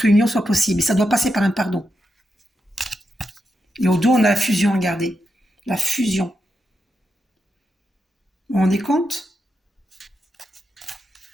soit possible. Et ça doit passer par un pardon. Et au dos, on a la fusion à garder. La fusion. Vous vous rendez compte?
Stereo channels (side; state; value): both; normal; correlation 0.86